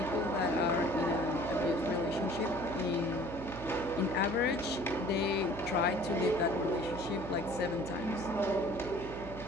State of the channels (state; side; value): noise; right; hum, 11 dB below the sound